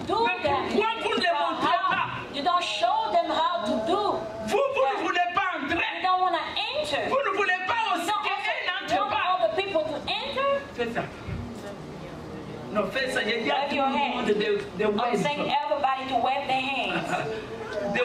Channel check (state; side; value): identical; both; correlation 1.00